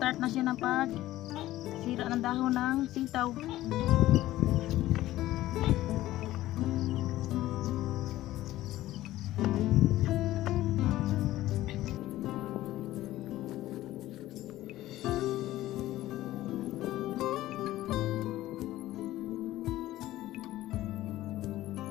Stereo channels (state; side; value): quieter; right; 15.4 dB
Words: na siya ng sira ng dahon ng sitaw.